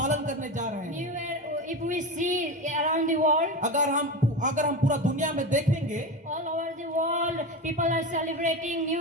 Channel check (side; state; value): both; normal; correlation 0.22